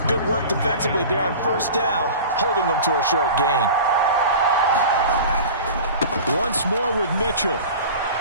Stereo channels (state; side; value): inverted; both; correlation -0.36